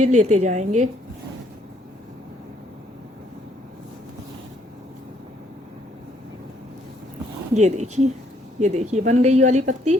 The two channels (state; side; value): normal; both; correlation 0.68